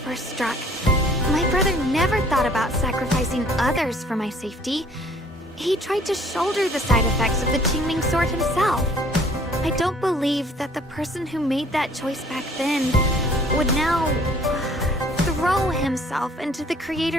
struck, my brother never thought about sacrificing others for my safety. He tried to shoulder the side effects of the Qingming sword himself. I don't believe that the person who made that choice back then would now throw himself into the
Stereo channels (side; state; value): both; normal; correlation 0.56